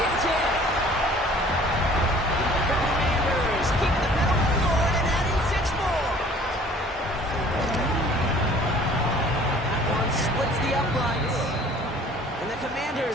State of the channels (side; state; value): both; normal; correlation 0.52